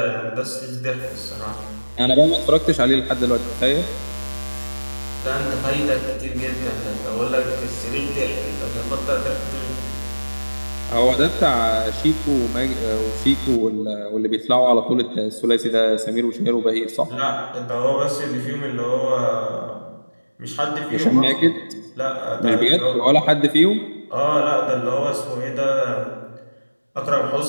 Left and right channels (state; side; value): inverted; both; correlation -1.00